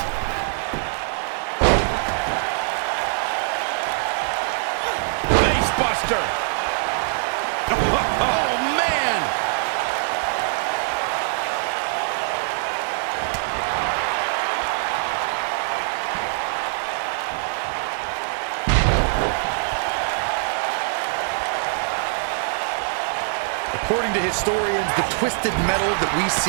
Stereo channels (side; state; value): left; silent; digital silence